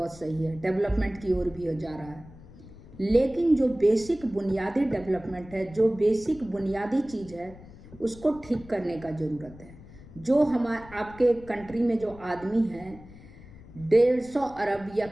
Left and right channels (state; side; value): noise; left; rumble, 19 dB below the sound